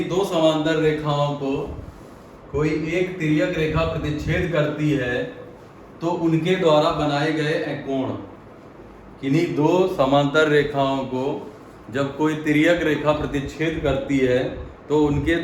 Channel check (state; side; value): identical; both; correlation 1.00